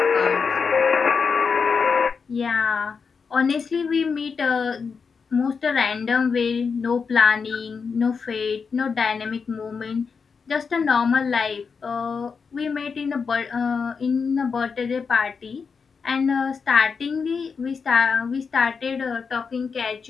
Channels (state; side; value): quieter; right; 5.5 dB